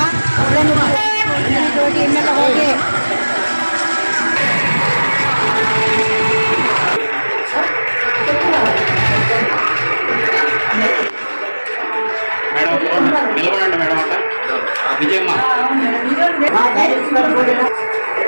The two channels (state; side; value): inverted; both; correlation -1.00